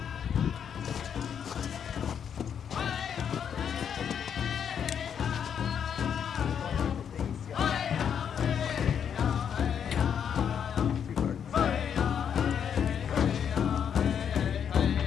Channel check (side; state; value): right; quieter; 8.0 dB